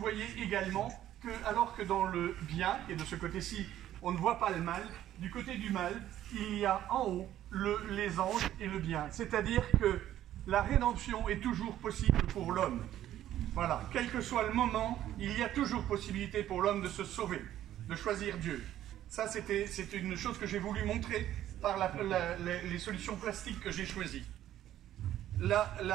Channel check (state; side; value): quieter; left; 12.4 dB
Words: également que, alors que dans le bien, et de ce côté-ci, on ne voit pas le mal, du côté du mal, il y a en haut les anges et le bien. C'est-à-dire que la rédemption est toujours possible pour l'homme. Voilà, quel que soit le moment, il y a toujours possibilité pour l'homme de se sauver, de choisir Dieu. Ça, c'est une chose que j'ai voulu montrer par les solutions plastiques que j'ai choisies.